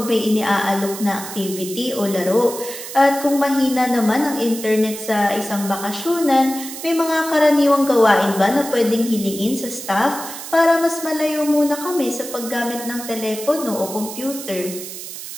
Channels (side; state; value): right; noise; hiss, 10 dB below the sound